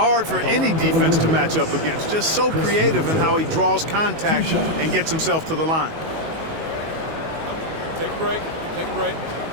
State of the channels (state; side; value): late; left; 19 ms